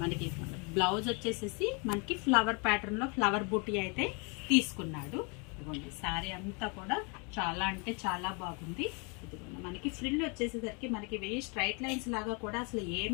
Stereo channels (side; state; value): right; quieter; 33.6 dB